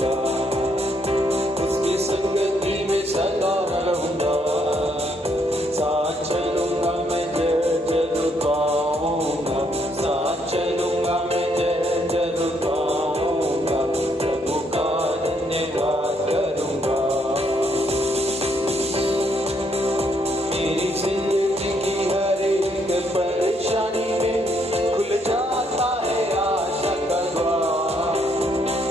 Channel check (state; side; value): normal; both; correlation 0.72